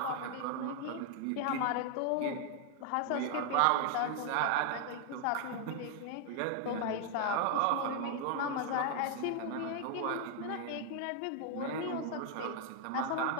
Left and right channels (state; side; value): different; both; correlation 0.00